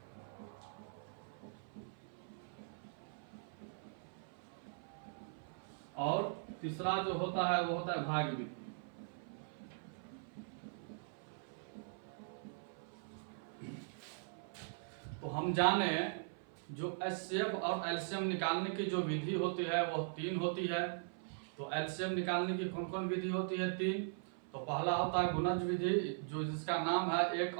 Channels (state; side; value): silent; left; 51 dB below the other